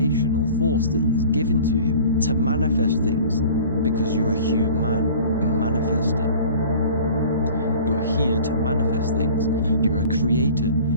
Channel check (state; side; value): inverted; both; correlation -0.44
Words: force that is given to you to manifest things, because you're a human, a manifester. You're here to manifest things. You're a creator.